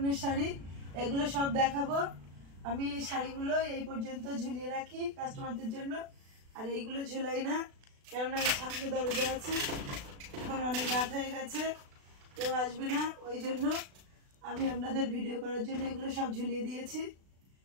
শাড়ি। এগুলো সব দেখাবো। আমি এই শাড়িগুলো এই পর্যন্ত ঝুলিয়ে রাখি কাস্টমারদের জন্য, আর এইগুলো ঝুলাই না, কেননা সামনে দরজা আছে, এখন অনেক রাত হয়ে গেছে, কেউ আসবে না, ওই জন্য আমি আপনাদের ভিডিও করার জন্য এগুলো সব ঝুলিয়ে দিয়েছি,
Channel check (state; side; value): late; left; 36 ms